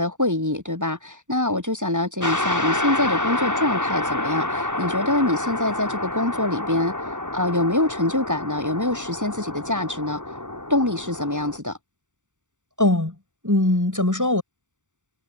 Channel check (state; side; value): late; left; 0.86 ms